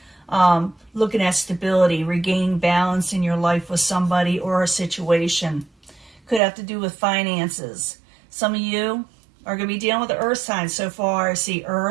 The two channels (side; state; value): left; drops out; at 6.4 s